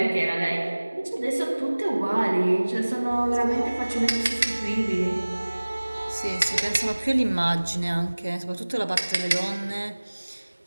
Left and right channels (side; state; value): both; inverted; correlation -1.00